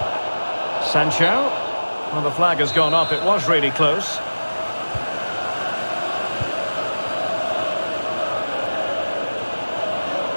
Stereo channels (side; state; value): both; inverted; correlation -1.00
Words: Sancho. Well, the flag has gone up. It was really close.